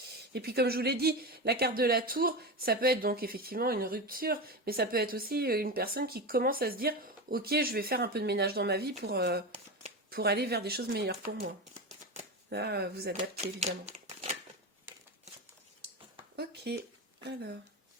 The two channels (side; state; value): both; normal; correlation 0.20